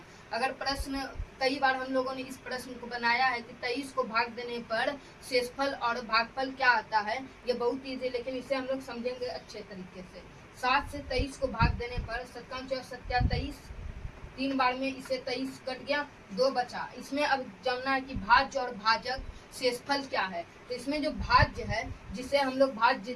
अगर प्रश्न कई बार हम लोगों ने इस प्रश्न को बनाया है कि 23 को भाग देने पर शेषफल और भागफल क्या आता है। ये बहुत ईजी, लेकिन इसे हम लोग समझेंगे अच्छे तरीके से। 7 से 23 को भाग देने पर 7×7 = 3 बार में इसे 23 कट गया, 2 बचा। इसमें अब जानना है कि भाज्य और भाजक शेषफल क्या है। तो इसमें जो भाज्य है, जिसे हम लोग भाज्य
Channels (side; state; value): both; identical; correlation 1.00